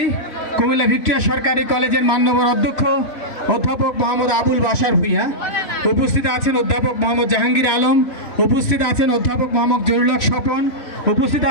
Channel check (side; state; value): right; late; 3.1 ms